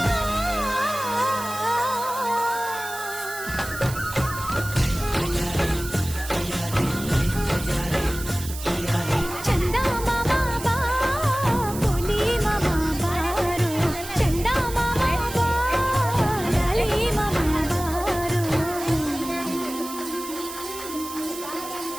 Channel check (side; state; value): right; noise; hiss, 11 dB below the sound